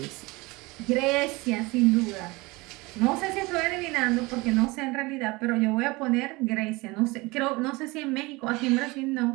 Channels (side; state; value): left; quieter; 23.5 dB